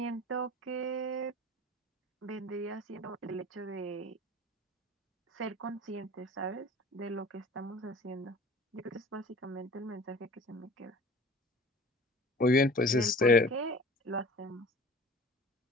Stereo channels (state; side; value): normal; both; correlation 0.43